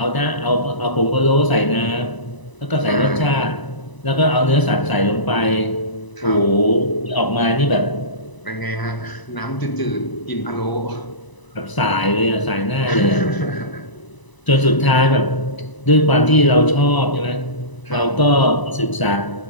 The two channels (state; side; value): late; right; 1.0 ms